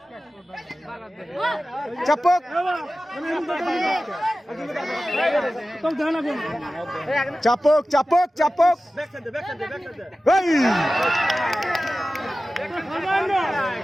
চাপক চাপক চাপক চাপক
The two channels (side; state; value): both; normal; correlation 0.95